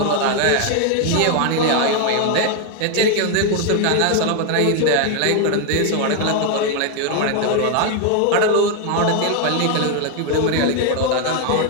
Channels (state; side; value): different; both; correlation 0.01